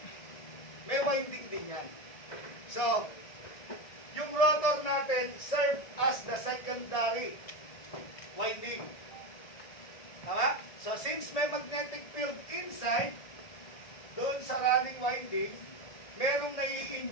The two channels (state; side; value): late; right; 1.7 ms